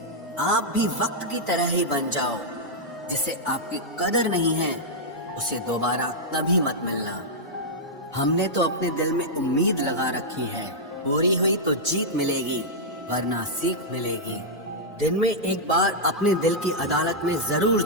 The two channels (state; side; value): normal; both; correlation -0.07